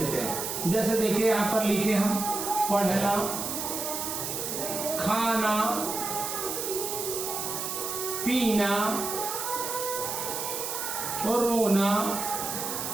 हैं। जैसे देखिए यहाँ पर लिखे हम, पढ़ना, खाना, पीना, रोना,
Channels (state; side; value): noise; right; hiss, 4 dB below the sound